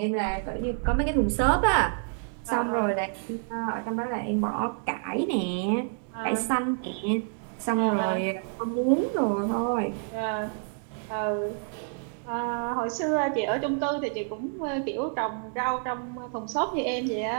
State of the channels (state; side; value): silent; left; 56 dB below the other